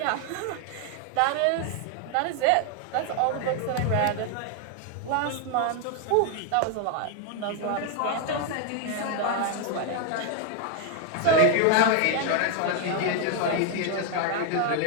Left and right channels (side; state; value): both; different; correlation 0.01